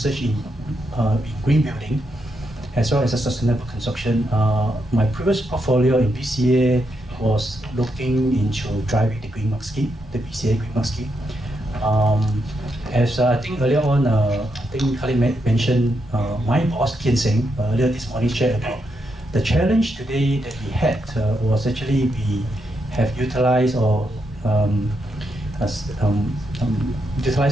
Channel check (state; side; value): normal; both; correlation 0.82